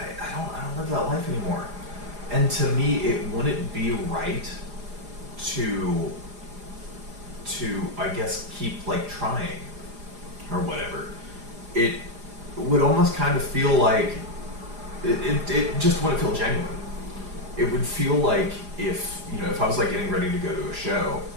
don't live that life anymore. And to me, it wouldn't be right to I guess keep like trying or whatever. It would almost kind of feel like it just wouldn't feel genuine. It would feel like if I was like getting ready to go to a show,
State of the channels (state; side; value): late; left; 4.9 ms